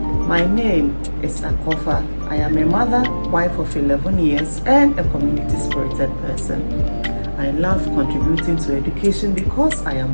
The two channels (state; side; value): inverted; both; correlation -1.00